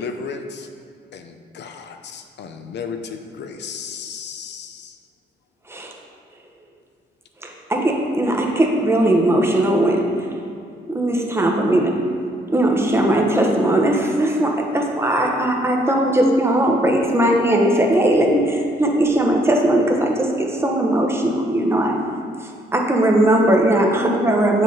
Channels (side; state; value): both; normal; correlation 0.69